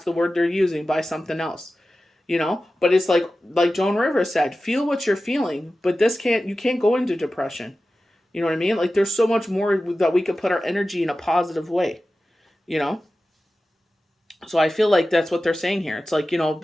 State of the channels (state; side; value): normal; both; correlation 0.94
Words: the word they're using, by something else. But it's like Joan Rivers said, feel what you're feeling, but you can't go into depression. You know what I mean? Like, there's so much more that we could put our energy in a positive way, So I feel like that's what they're saying here. It's like,